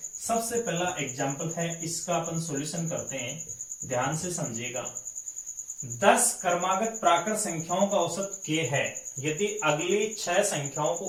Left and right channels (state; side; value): identical; both; correlation 1.00